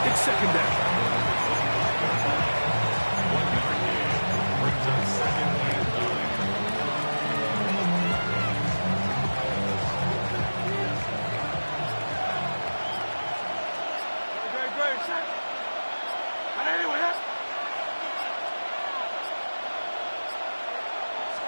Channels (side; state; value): both; inverted; correlation -1.00